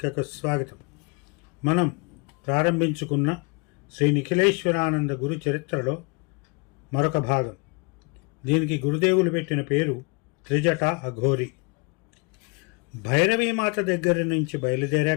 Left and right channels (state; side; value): quieter; right; 30.9 dB